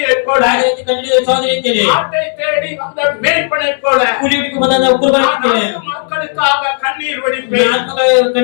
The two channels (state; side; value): silent; right; 67 dB below the other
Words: போல, ಅದೇ ರೀತಿ ಕಂಡಿಡಿದ ಸಹೋದರಿ ರೀತಿಯಲ್ಲಿ, ஆட்டை தேடி வந்த மேய்ப்பனைப் போல, ಕುರಿ ಹುಡುಕಿ ಬಂದ ಕುರುಬನ நான் ರೀತಿಯಲ್ಲಿ நாட்டு மக்களுக்காக கண்ணீர் வடிப்பேன். ಆತ್ಮಗಳ